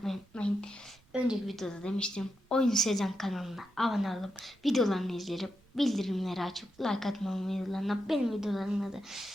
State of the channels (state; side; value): noise; right; rumble, 29 dB below the sound